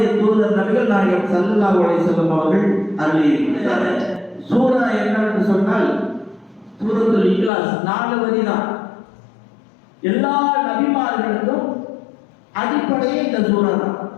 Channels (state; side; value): drops out; right; at 7.5 s